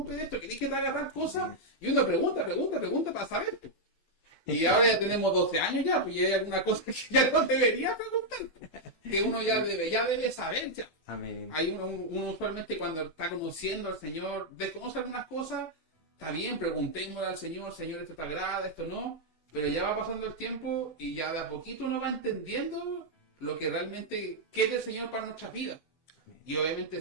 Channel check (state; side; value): late; right; 12 ms